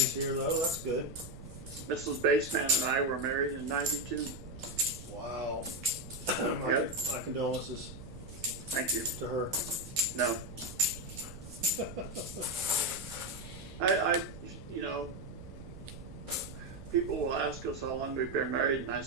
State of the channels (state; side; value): noise; right; rumble, 13 dB below the sound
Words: here, though. That's good. Mrs. Baseman and I were married in '92. Wow. Yep. My condolences Thank you. to her. No. I people will ask us how long we've been married, and I